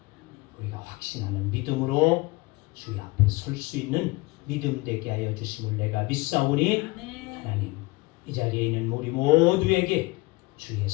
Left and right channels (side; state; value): right; quieter; 23.1 dB